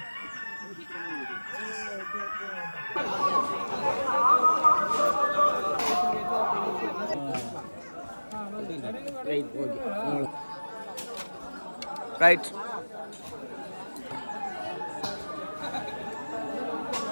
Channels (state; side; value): inverted; both; correlation -1.00